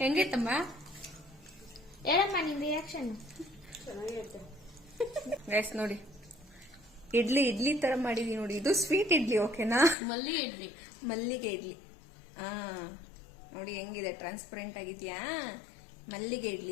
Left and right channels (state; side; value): drops out; right; at 10.0 s